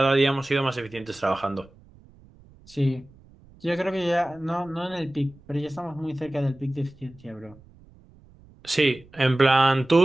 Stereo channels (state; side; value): noise; right; rumble, 26 dB below the sound